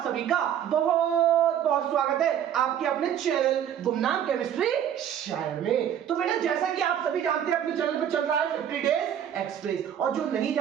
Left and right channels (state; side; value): quieter; left; 9.6 dB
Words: सभी का बहुत बहुत स्वागत है आपके अपने चैनल गुमनाम केमिस्ट्री शायर में। तो बेटा जैसा कि आप सभी जानते हैं अपने चैनल पे चल रहा है 50 डेज एक्सप्रेस, और जो नहीं